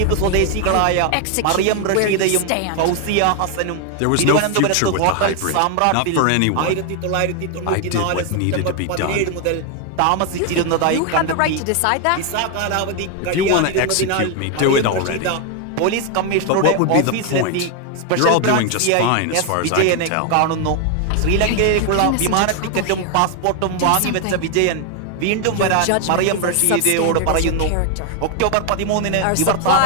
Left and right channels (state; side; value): different; both; correlation 0.01